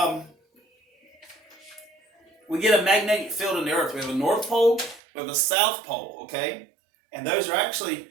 magnetic field in the earth. We have a north pole, we have a south pole, okay? And those are actually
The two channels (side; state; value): left; drops out; at 5.0 s